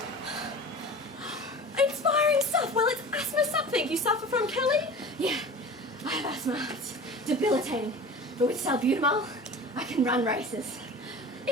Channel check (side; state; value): both; normal; correlation 0.37